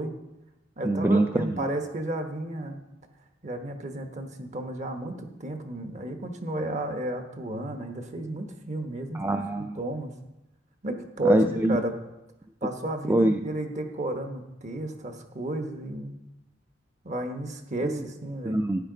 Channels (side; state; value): both; normal; correlation 0.74